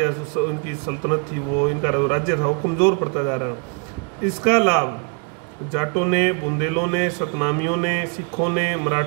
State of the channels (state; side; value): quieter; left; 38.3 dB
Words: उनकी सल्तनत थी, वो इनका राज्य था, वो कमजोर पड़ता जा रहा। इसका लाभ जाटों ने, बुंदेलों ने, सतनामियों ने, सिखों ने,